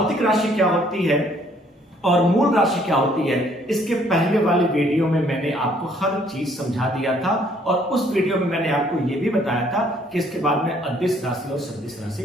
राशि क्या होती है और मूल राशि क्या होती है। इसके पहले वाले वीडियो में मैंने आपको हर चीज समझा दिया था और उस वीडियो में मैंने आपको यह भी बताया था कि इसके बाद मैं अदिश राशि और सदिश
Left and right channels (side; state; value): both; normal; correlation 0.63